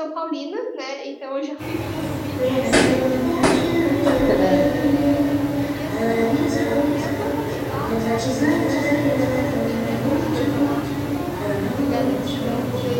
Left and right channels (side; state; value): both; identical; correlation 1.00